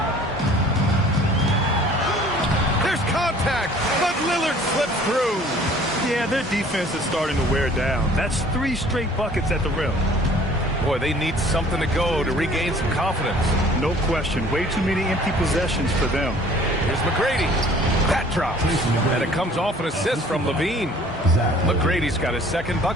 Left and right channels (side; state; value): both; normal; correlation 0.52